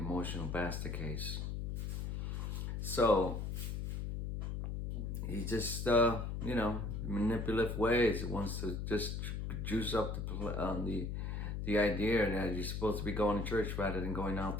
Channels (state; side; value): noise; left; hum, 3 dB below the sound